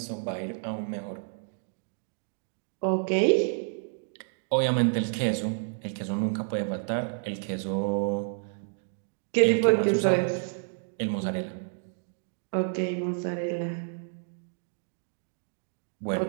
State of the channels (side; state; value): left; silent; digital silence